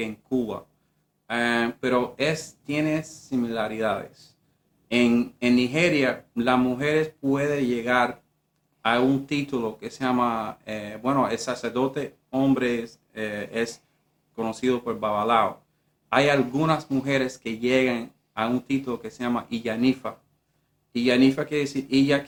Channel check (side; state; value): both; identical; correlation 1.00